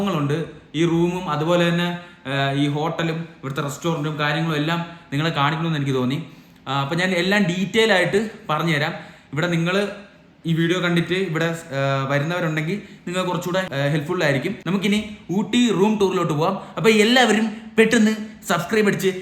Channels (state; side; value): identical; both; correlation 1.00